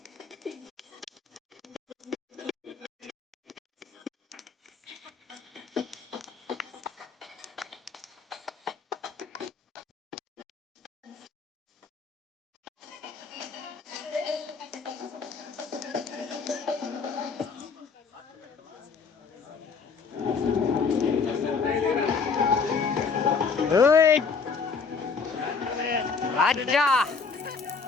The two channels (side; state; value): right; quieter; 5.2 dB